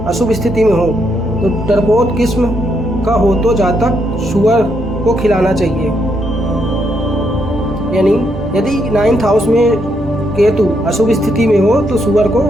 अशुभ स्थिति में हो तो डरपोक किस्म का हो तो जातक सुअर को खिलाना चाहिए। यानी यदि 9th हाउस में केतु अशुभ स्थिति में हो तो सुअर को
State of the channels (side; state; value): both; normal; correlation 0.77